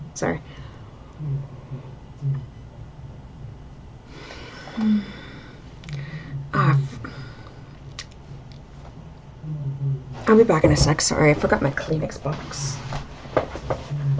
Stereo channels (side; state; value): both; identical; correlation 1.00